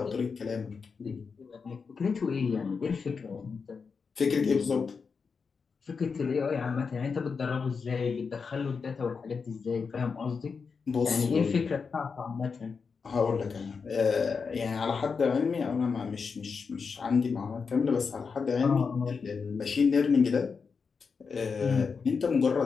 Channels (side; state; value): right; quieter; 5.4 dB